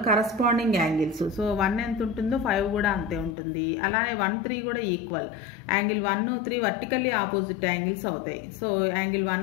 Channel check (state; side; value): drops out; right; at 3.3 s